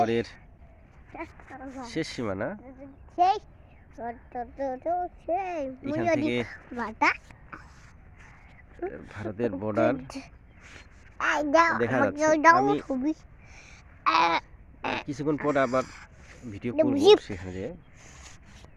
শেষ সীমানা। এখান থেকে ভারতের বর্ডার দেখা যাচ্ছে। আমি কিছুক্ষণ পর আবার ভিডিও করব সেখানে যেয়ে।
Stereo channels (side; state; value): both; identical; correlation 1.00